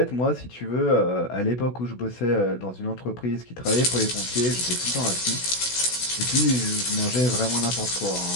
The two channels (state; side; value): late; right; 16 ms